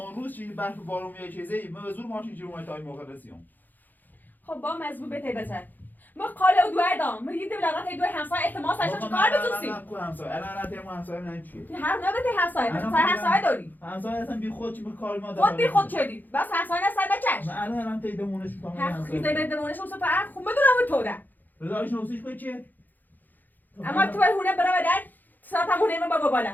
روز چی برف بارون میاد چیزی ما به زور ماشین جلو ما تا این موقع رسیدیم خب با مزبوط به تیبتر ما قاله دو دام ما یه دولت دو همسایه احتمال ساشا چیکار بتوسی الان تیم همسایه من چیه هر نبته همسایه همسایه داری همسایه اصلا بی خود چی به کار ما خود بی خود چدی بس همسایه نسل بچش من الان تیدمونش میکنم هر خیزه بدمونش اون سفر خوب بدونم تو ده رضایش نوسیش به چیه اما تو هونه برا بدن ساعت همونه من بابا بالا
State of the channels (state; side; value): late; right; 0.086 ms